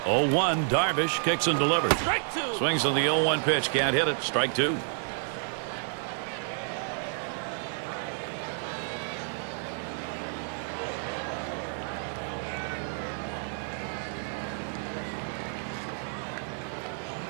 0-1, Darvish kicks and delivers. Strike two. Swings on the 0-1 pitch, can't hit it. Strike two.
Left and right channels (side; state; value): left; silent; 55 dB below the other